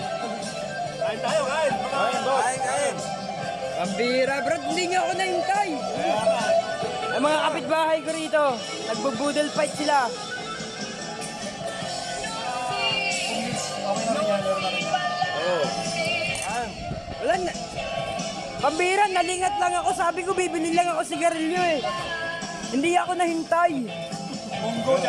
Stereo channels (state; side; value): identical; both; correlation 1.00